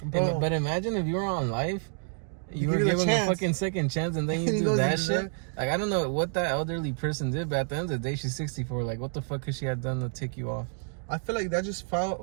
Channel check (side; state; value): left; silent; 59 dB below the other